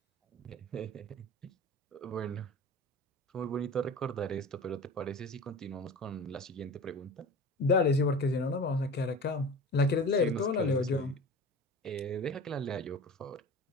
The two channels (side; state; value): both; normal; correlation 0.36